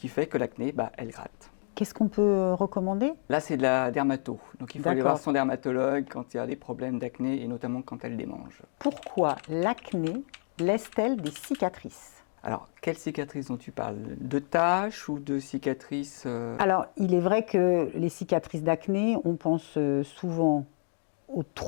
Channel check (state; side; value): silent; right; digital silence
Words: fait que l'acné, elle gratte. Qu'est-ce qu'on peut recommander? Là c'est de la dermato, donc il faut aller voir D'accord. son dermatologue quand il y a des problèmes d'acné et notamment quand elle démange. Pourquoi l'acné laisse-t-elle des cicatrices? Alors quelles cicatrices dont tu parles? De taches ou de cicatrices Alors, il est vrai que les cicatrices d'acné, on pense souvent aux